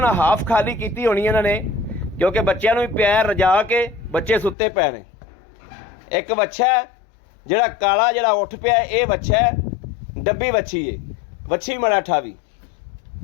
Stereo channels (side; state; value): right; drops out; at 4.5 s